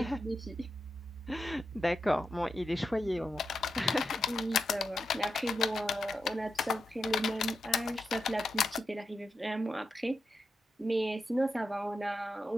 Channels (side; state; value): both; normal; correlation 0.87